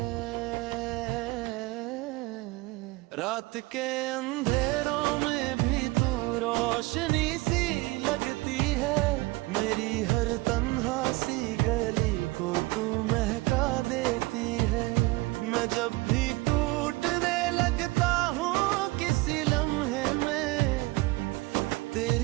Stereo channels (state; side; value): quieter; left; 21.7 dB